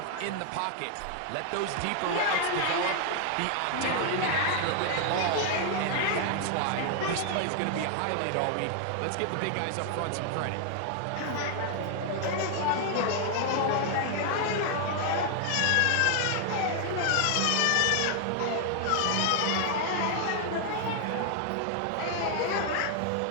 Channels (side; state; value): both; different; correlation 0.00